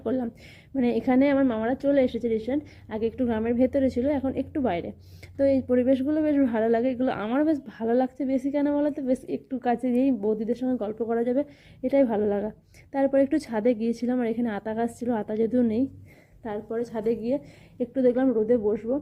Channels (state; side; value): identical; both; correlation 1.00